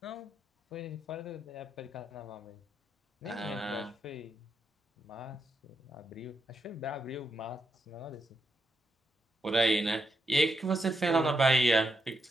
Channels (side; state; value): both; normal; correlation 0.82